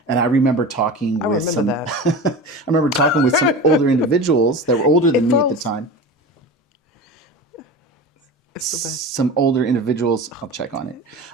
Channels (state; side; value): normal; both; correlation 0.31